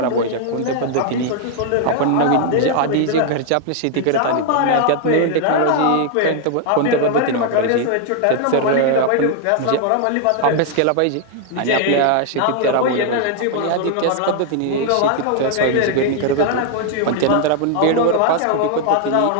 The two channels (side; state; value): both; different; correlation 0.00